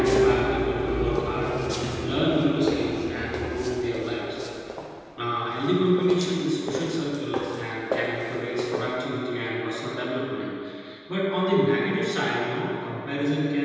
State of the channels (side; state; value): both; identical; correlation 1.00